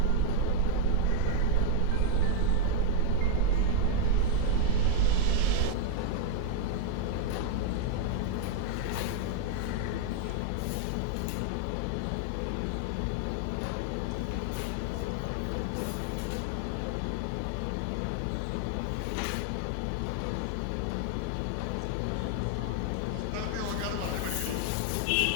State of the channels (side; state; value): both; different; correlation -0.01